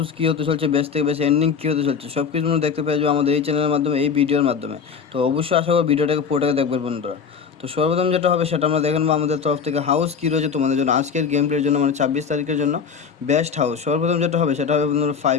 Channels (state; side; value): quieter; right; 6.3 dB